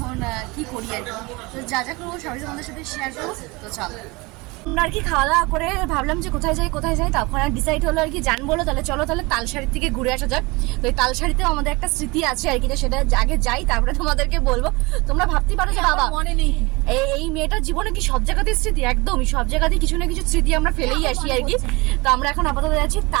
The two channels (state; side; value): quieter; left; 24.7 dB